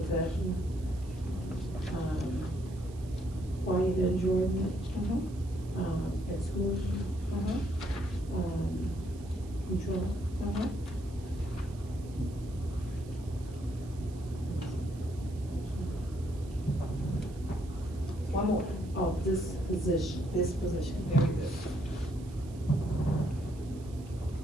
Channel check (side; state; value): right; noise; hiss, 24 dB below the sound